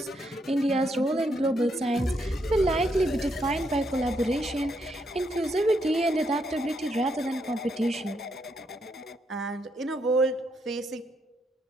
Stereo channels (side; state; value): both; normal; correlation 0.77